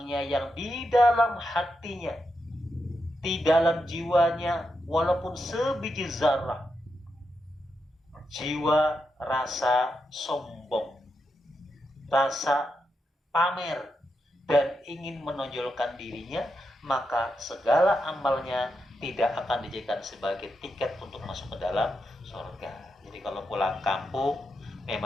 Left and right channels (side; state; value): both; normal; correlation 0.85